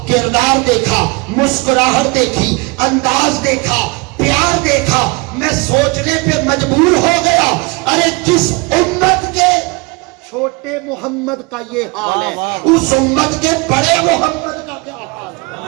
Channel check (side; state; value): left; quieter; 27.1 dB